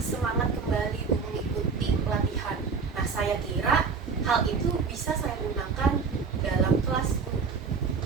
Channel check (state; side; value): quieter; left; 5.2 dB